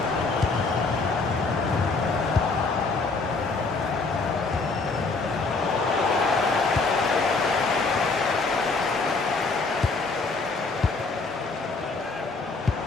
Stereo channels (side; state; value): right; quieter; 3.9 dB